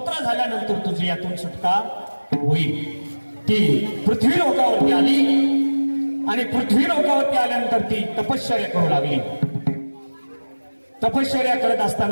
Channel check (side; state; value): both; inverted; correlation -1.00